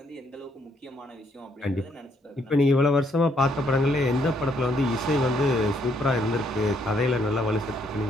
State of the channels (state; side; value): normal; both; correlation 0.71